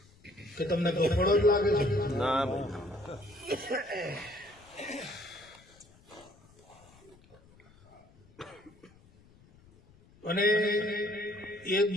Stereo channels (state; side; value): noise; left; rumble, 27 dB below the sound